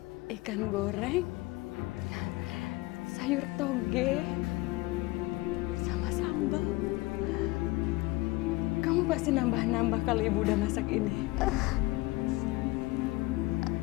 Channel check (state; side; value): quieter; right; 20.9 dB